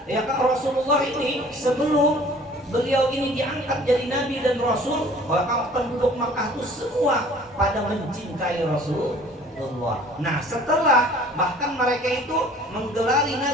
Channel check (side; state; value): both; normal; correlation 0.51